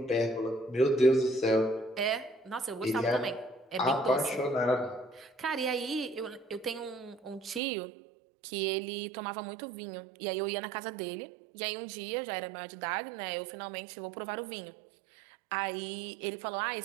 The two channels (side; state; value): left; drops out; at 7.6 s